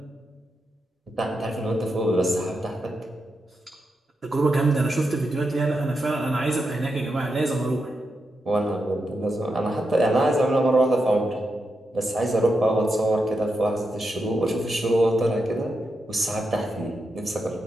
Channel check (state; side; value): normal; both; correlation 0.86